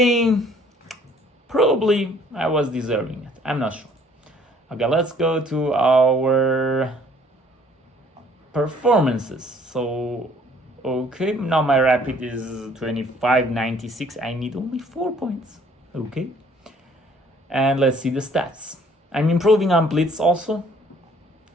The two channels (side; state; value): both; normal; correlation 0.58